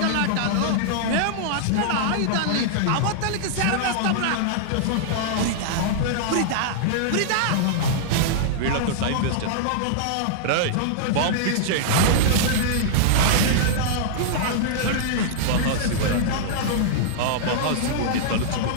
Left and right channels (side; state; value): both; different; correlation -0.02